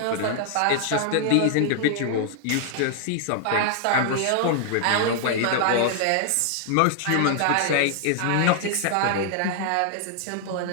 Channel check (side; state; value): both; different; correlation 0.00